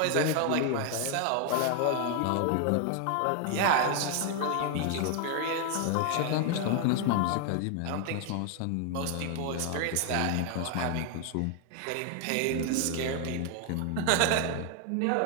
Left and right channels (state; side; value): different; both; correlation 0.00